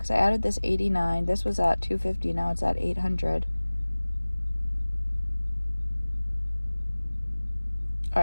I added this 89. This was at 250. Now it's at 800. All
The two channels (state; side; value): inverted; both; correlation -1.00